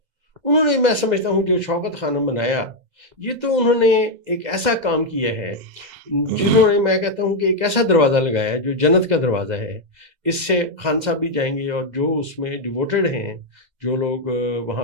انہوں نے، میں سمجھتا ہوں جو شوکت خانم بنایا، یہ تو انہوں نے ایک ایسا کام کیا ہے جنہوں نے، میں کہتا ہوں کہ ایک ایسا دروازہ لگایا ہے جو جنت کا دروازہ ہے. اس سے خان صاحب بھی جائیں گے، اور جو اس میں ڈیووٹڈ ہیں، جو لوگ وہاں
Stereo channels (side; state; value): left; late; 2.0 ms